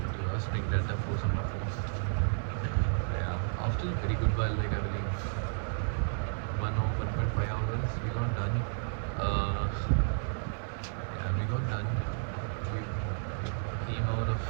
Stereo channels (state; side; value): silent; left; 56 dB below the other